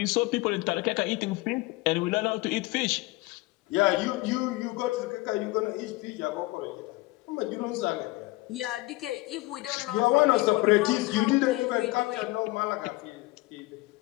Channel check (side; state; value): right; quieter; 21.2 dB